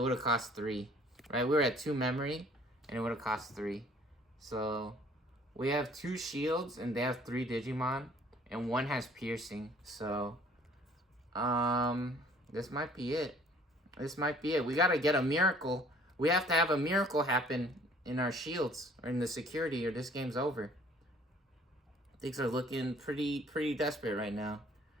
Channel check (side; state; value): both; normal; correlation 0.55